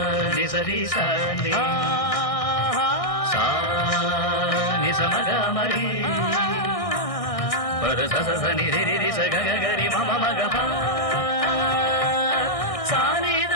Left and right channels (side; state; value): right; late; 1.6 ms